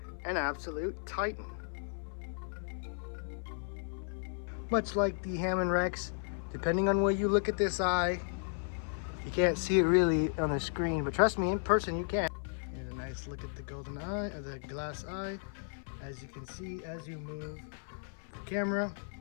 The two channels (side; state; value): right; silent; 55 dB below the other